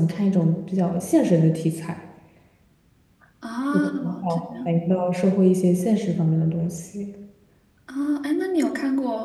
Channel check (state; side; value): identical; both; correlation 1.00